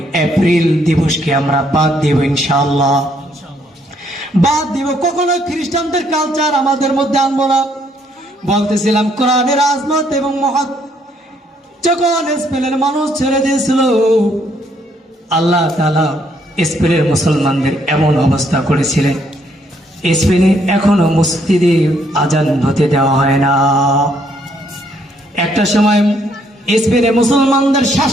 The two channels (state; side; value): normal; both; correlation 0.69